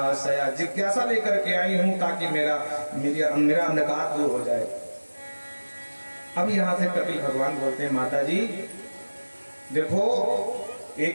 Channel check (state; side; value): inverted; both; correlation -1.00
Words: लेकर के आई हूँ ताकि मेरा अंधकार दूर हो जाए। अब यहाँ से कपिल भगवान बोलते हैं, माता जी देखो, ये